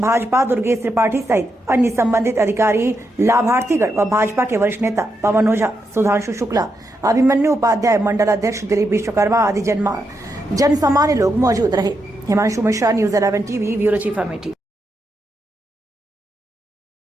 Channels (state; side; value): normal; both; correlation 0.83